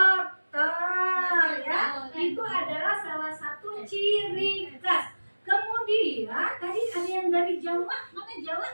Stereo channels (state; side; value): inverted; both; correlation -1.00